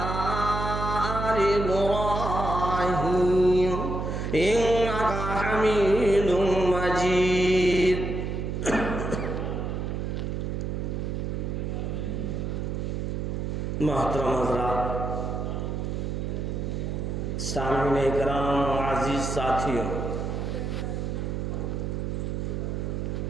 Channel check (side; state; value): right; noise; hum, 2 dB below the sound